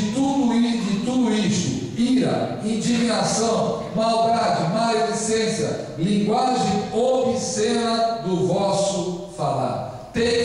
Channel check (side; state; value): both; identical; correlation 1.00